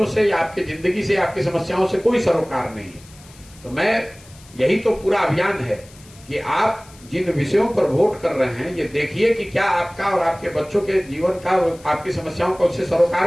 से या आपकी जिंदगी से, आपकी समस्याओं से कोई सरोकार नहीं है। तो मैं यही तो पूरा अभियान है कि आप जिन विषयों पर वोट कर रहे हैं, ये देखिए कि क्या आपका और आपके बच्चों के जीवन का, आपकी समस्याओं का उससे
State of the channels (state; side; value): noise; left; hiss, 24 dB below the sound